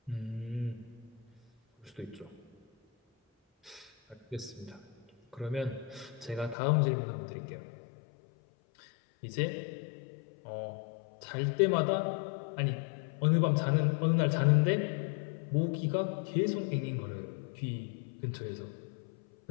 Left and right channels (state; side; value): drops out; right; at 6.6 s